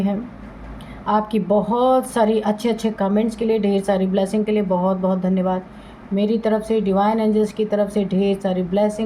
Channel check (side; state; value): both; identical; correlation 1.00